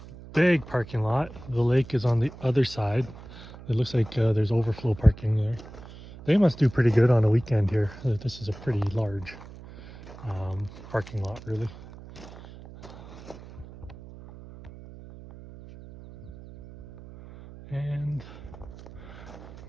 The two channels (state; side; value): noise; right; hum, 16 dB below the sound